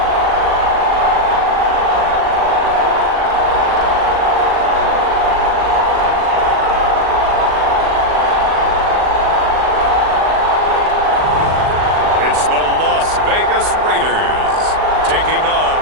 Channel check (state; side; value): late; left; 39 ms